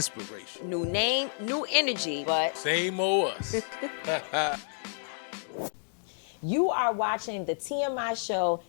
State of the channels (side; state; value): right; silent; digital silence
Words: New name, new energy, but same old us. You are watching the TMI show,